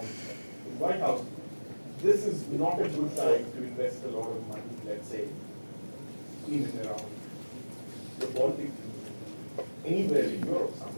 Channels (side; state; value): both; inverted; correlation -1.00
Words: the White House, this is not a good time to invest a lot of money, let's say, in and around the Baltic, anywhere in Europe,